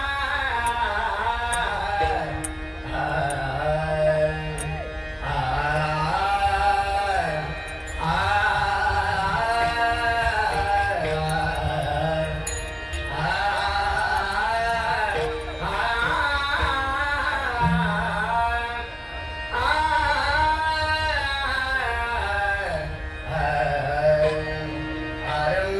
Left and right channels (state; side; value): identical; both; correlation 1.00